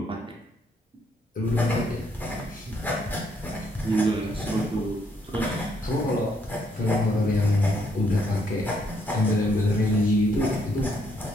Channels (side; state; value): both; normal; correlation 0.72